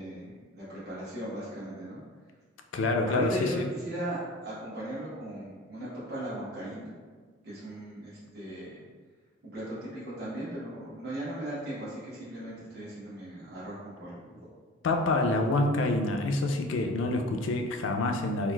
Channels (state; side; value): normal; both; correlation 0.39